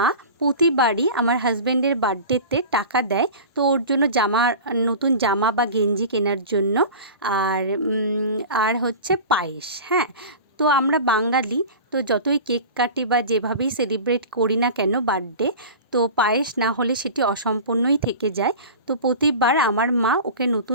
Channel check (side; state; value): both; inverted; correlation -0.34